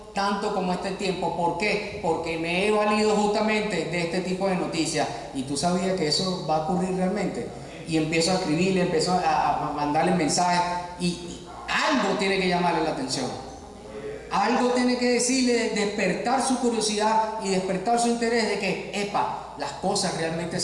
tanto como este tiempo. ¿Por qué? Porque me he valido justamente de este tipo de noticias. Y tú sabías que eso va a ocurrir realmente. Y empiezo a escribirle, empiezo a mandarle mensajes, y algo tiene que llamarle la atención. Algo tiene que decirle, despertar su curiosidad y despertar su interés de que, las cosas realmente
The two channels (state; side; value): identical; both; correlation 1.00